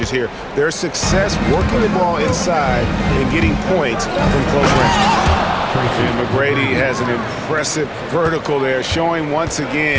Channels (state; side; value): identical; both; correlation 1.00